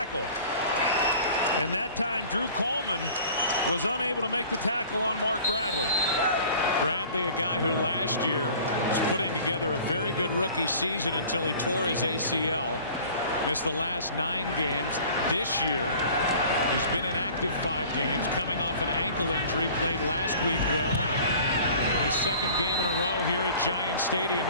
And that time, Drew Coleman was unable to make the tackle on Mark Bradley. Bradley, a guy who last year was putting together a very good rookie season until he tore his ACL. Missed the last 9 games. This year, he's been inactive 5 games, coming off an ankle injury, played last week well. His second game in a row here at Giant Stadium.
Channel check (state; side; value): inverted; both; correlation -0.46